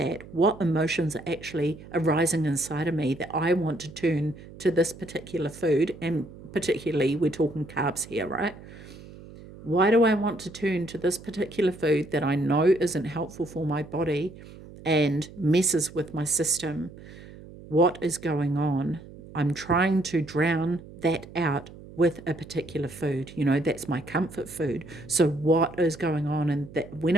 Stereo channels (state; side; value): noise; right; hum, 17 dB below the sound